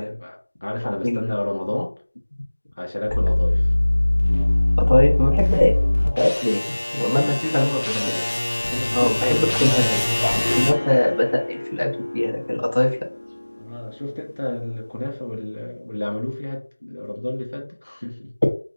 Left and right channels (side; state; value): both; inverted; correlation -1.00